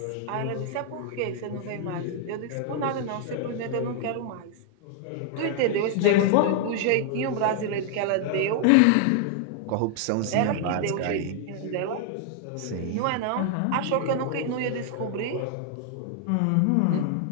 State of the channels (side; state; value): both; different; correlation 0.00